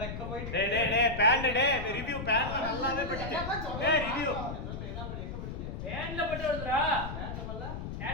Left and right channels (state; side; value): noise; left; rumble, 6 dB below the sound